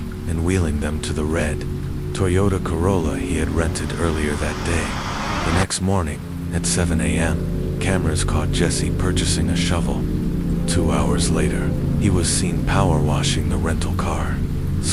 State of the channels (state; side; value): identical; both; correlation 1.00